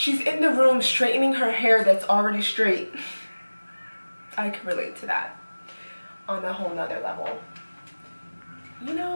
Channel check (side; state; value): both; inverted; correlation -1.00